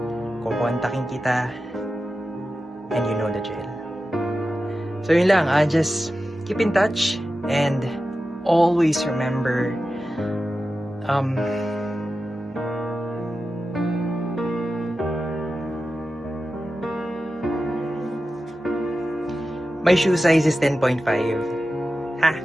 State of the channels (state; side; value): normal; both; correlation 0.92